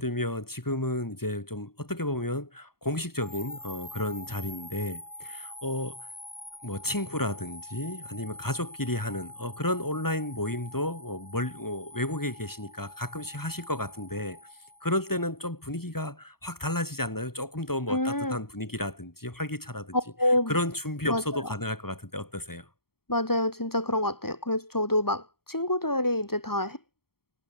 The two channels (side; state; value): right; late; 0.95 ms